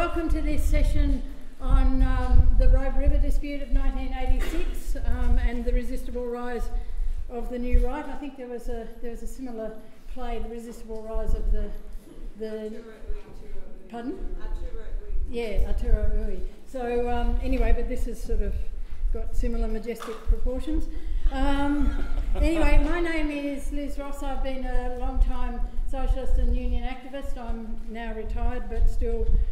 to this session on the Robe River dispute of 1986 and the resistible rise of the new right. I think there was a similar play, the resistible rise of the pardon? Yeah, Aotearoa Ui. So anyway, but this has sort of got similar majestic proportions. Anyway, my name is Liz Ross. I've been a long-time socialist and union activist. I'm now retired, but still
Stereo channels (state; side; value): identical; both; correlation 1.00